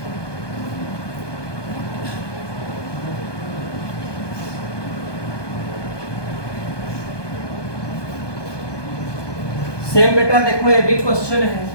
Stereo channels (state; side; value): late; right; 1.2 ms